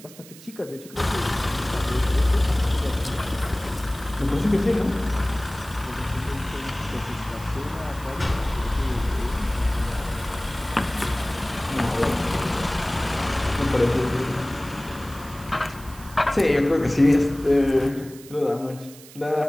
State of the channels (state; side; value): noise; right; hiss, 19 dB below the sound